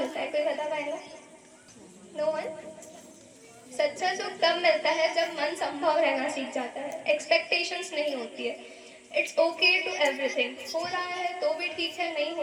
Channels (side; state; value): both; identical; correlation 1.00